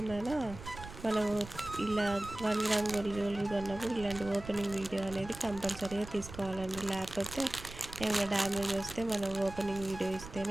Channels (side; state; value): right; noise; rumble, 13 dB below the sound